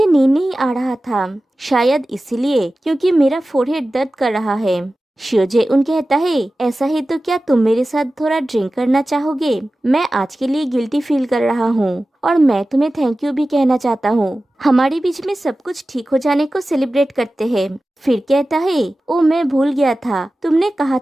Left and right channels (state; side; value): normal; both; correlation 0.95